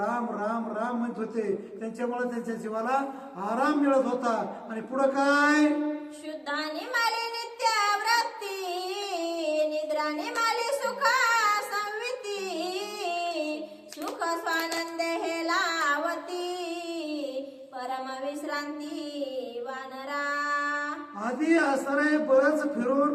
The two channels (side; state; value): both; identical; correlation 1.00